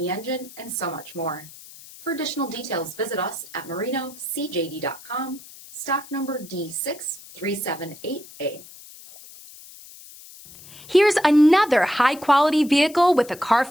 engine, and so much more. For additional details, visit us at marinocjd.com, stock number D6378A. Here's another high-quality vehicle with a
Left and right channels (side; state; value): left; noise; hiss, 19 dB below the sound